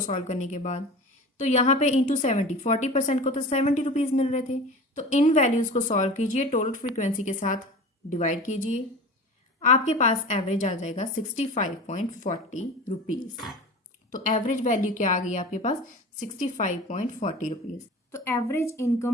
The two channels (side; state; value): both; normal; correlation 0.35